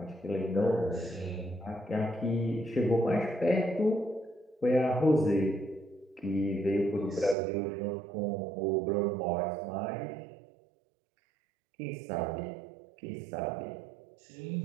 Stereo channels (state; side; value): drops out; left; at 7.4 s